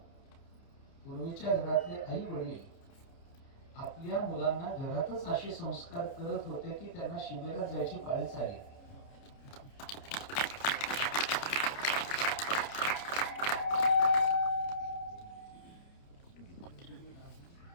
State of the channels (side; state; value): right; late; 29 ms